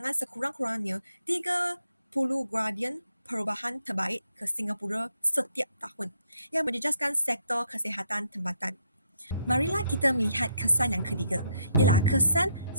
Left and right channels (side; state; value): both; inverted; correlation -0.73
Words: sekurang-kurangnya 30 gradian perubahan terbaik ke Singapura setiap tahun yang menjejaskan sektor kesihatan tempatan. Marilah kita melihat kesan yang ketiga, ialah kesan